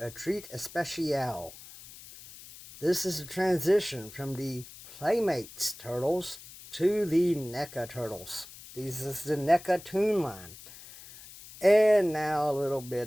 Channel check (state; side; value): noise; left; hiss, 17 dB below the sound